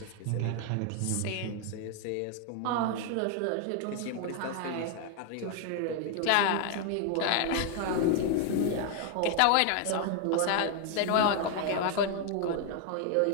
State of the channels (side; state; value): both; different; correlation 0.00